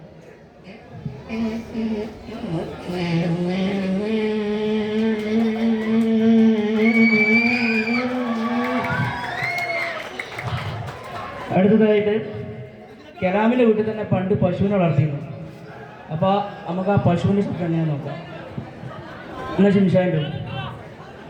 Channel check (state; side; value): identical; both; correlation 1.00